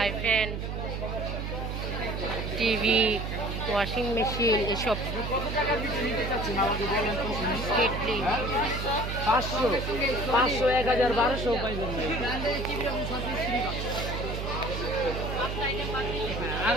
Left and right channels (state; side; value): noise; right; hum, 4 dB below the sound